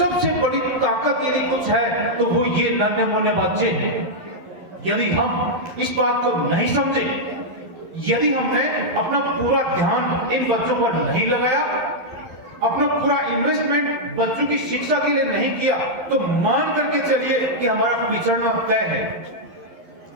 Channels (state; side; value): late; left; 11 ms